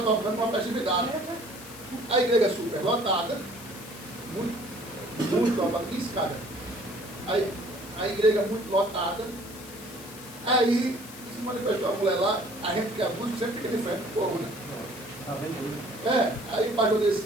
tocando uma festividade. A igreja super lotada, muito lotada, 15 cada. Aí, a igreja muito lotada. Aí se manifestou a mulher lá, a gente que é músico sempre fica de frente do povo, né? Aí o pastor disse,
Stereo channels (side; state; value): left; noise; hiss, 16 dB below the sound